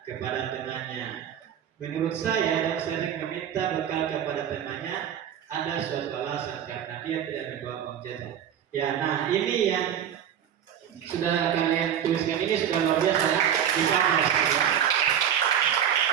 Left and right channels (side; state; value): left; quieter; 9.4 dB